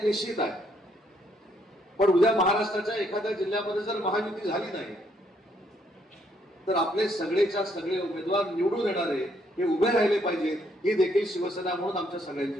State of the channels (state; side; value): normal; both; correlation 0.71